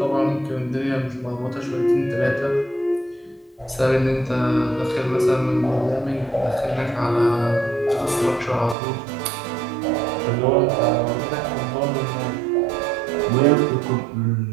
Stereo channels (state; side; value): drops out; left; at 8.8 s